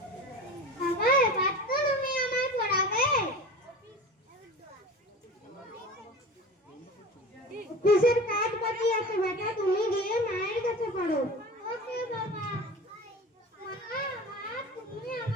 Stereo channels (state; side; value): normal; both; correlation 0.34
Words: বাবা, এবার তো তুমি আমায় পড়াবে। অফিসের কাজ বাকি আছে বেটা, তুমি গিয়ে মায়ের কাছে পড়ো। ওকে বাবা। মা, মা, তুমি